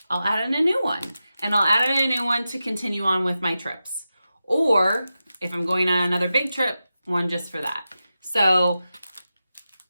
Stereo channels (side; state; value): both; inverted; correlation -0.92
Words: I'll add in a new one. And I'll add in a new one to continue on with my trips. Or if I'm going on another big trip, one just for that. So